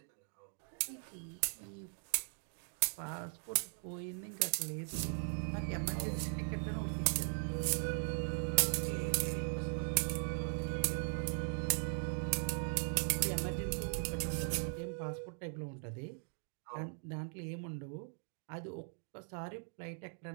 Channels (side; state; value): left; silent; 51 dB below the other